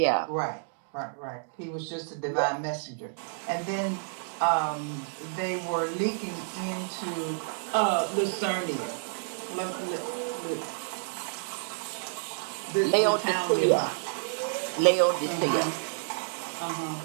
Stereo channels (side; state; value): left; silent; digital silence